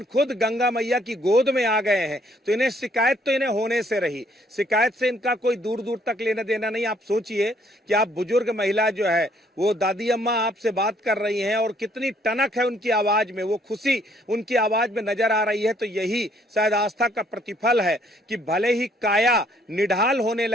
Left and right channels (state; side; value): normal; both; correlation 0.66